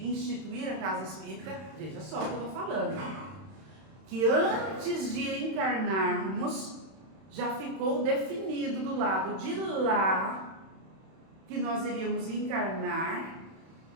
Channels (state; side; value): late; left; 31 ms